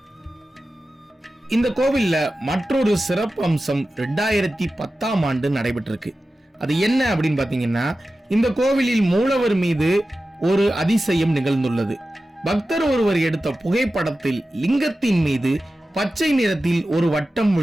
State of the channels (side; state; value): both; normal; correlation 0.94